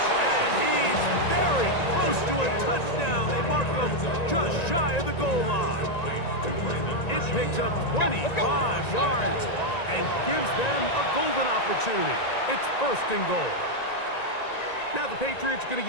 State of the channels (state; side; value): late; right; 1.9 ms